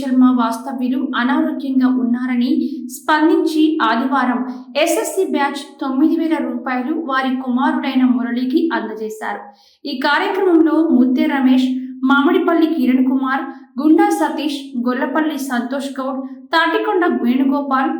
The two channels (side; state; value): both; identical; correlation 1.00